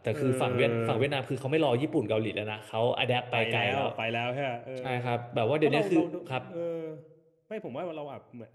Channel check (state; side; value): identical; both; correlation 1.00